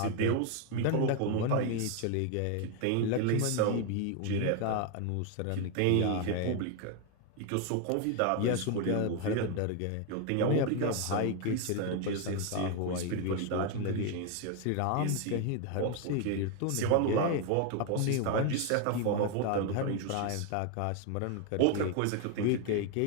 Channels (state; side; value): different; both; correlation 0.01